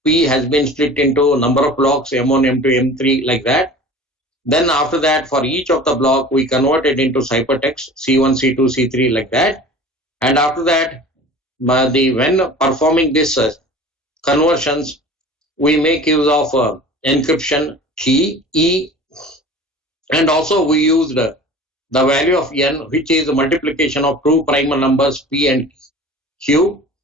P has been split into a number of blocks, M1, M2, M3, like that. Then after that, for each of the block, we convert it into ciphertext, C1, C2, C3, like that. And after that, when performing this conversions, we make use of encryption key E, and also we used the value of N, which is the multiplication of two primal numbers P and Q.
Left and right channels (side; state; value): both; normal; correlation 0.41